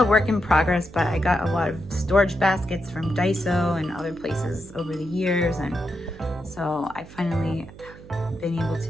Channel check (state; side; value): noise; right; hum, 18 dB below the sound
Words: work in progress, but I got a lot of storage baskets from Daiso and other places over the years. And so I finally have been able to